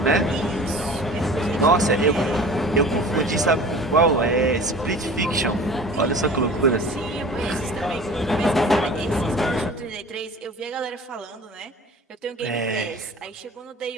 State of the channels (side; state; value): both; normal; correlation 0.41